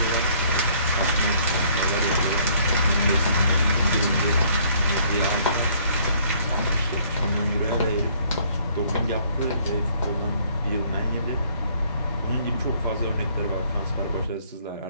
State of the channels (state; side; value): inverted; both; correlation -0.61